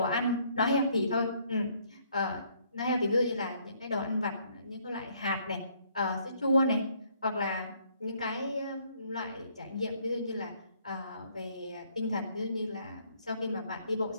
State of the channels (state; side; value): inverted; both; correlation -0.66